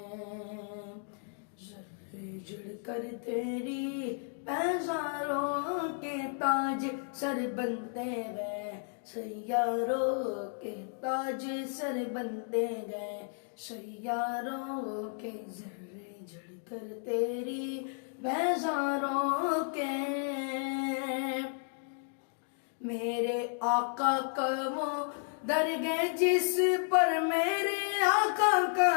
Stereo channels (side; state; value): right; silent; 56 dB below the other